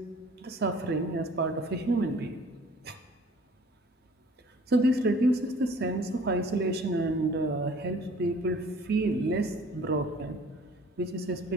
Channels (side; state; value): both; normal; correlation 0.52